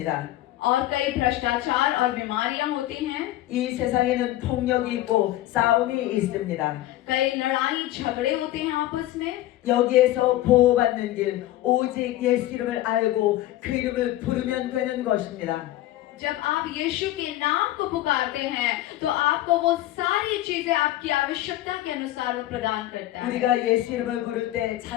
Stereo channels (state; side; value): quieter; right; 15.0 dB